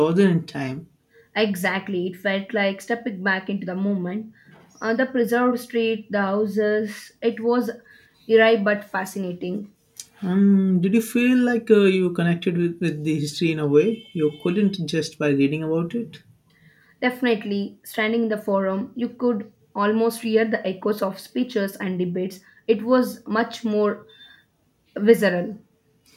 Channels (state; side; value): identical; both; correlation 1.00